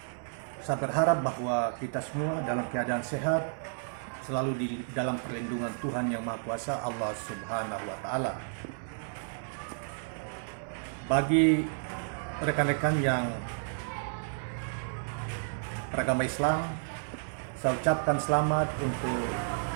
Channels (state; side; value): silent; left; digital silence